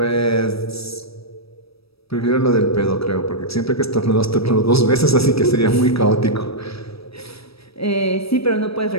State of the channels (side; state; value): right; late; 0.77 ms